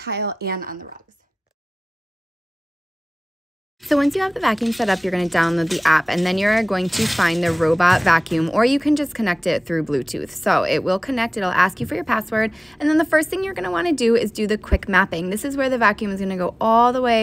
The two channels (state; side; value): normal; both; correlation 0.98